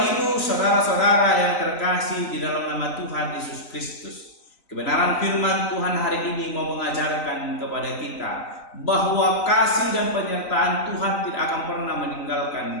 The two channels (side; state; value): right; late; 3.9 ms